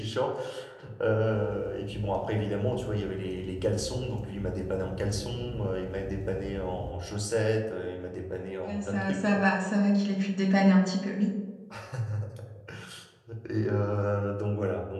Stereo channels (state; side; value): identical; both; correlation 1.00